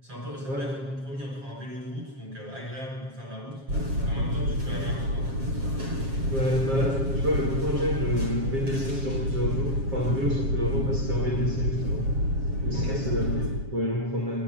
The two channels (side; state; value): left; late; 7.4 ms